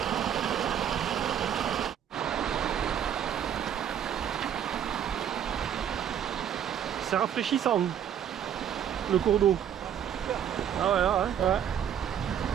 C'est rafraîchissant le cours d'eau. Ah ouais, ouais.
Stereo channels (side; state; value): left; quieter; 9.3 dB